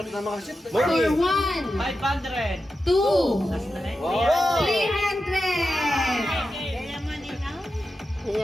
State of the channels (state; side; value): normal; both; correlation 0.90